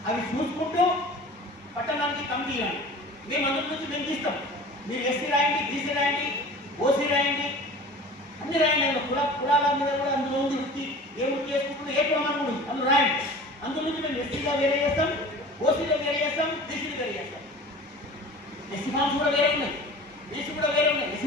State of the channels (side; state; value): both; normal; correlation 0.40